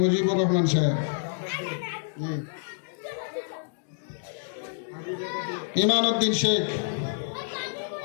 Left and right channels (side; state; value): right; silent; digital silence